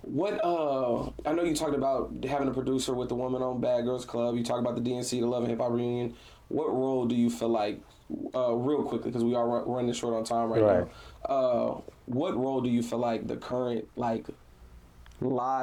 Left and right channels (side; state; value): both; identical; correlation 1.00